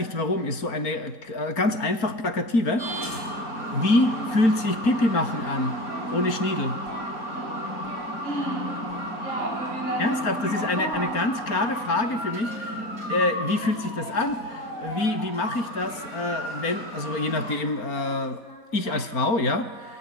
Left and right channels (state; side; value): late; right; 4.4 ms